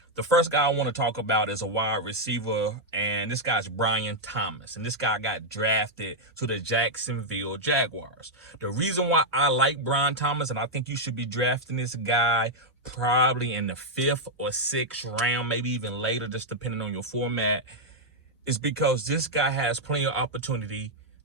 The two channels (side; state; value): both; normal; correlation -0.02